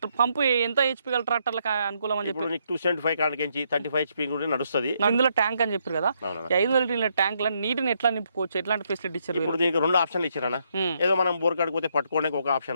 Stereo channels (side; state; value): both; inverted; correlation -0.75